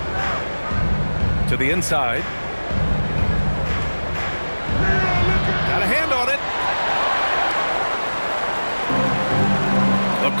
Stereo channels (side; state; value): both; inverted; correlation -1.00